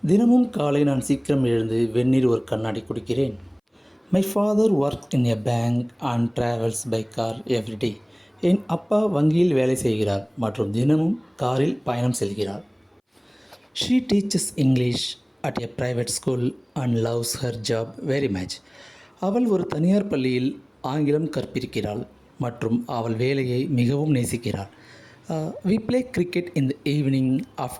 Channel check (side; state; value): both; identical; correlation 1.00